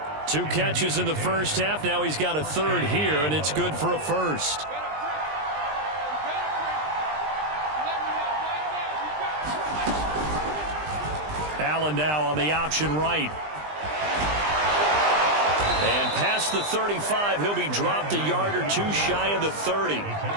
2 catches in the 1st half. Now he's got a 3rd here, and it's good for a 1st. Allen now on the option right. And past the 35, he'll be dropped a yard or 2 shy of the 30.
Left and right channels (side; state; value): left; late; 20 ms